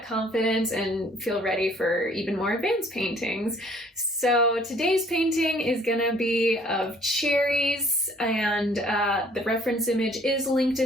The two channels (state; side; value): normal; both; correlation 0.58